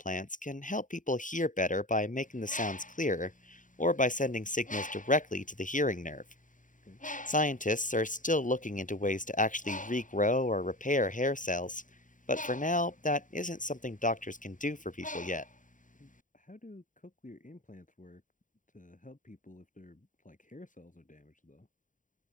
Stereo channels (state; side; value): late; right; 0.38 ms